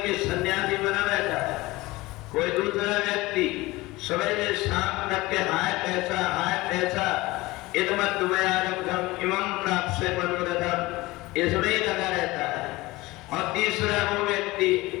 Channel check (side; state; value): right; quieter; 20.4 dB